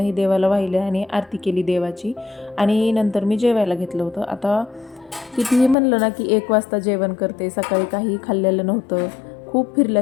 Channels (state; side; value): drops out; right; at 5.8 s